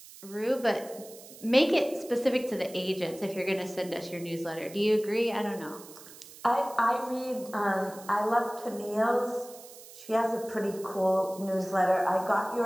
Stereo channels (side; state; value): right; noise; hiss, 18 dB below the sound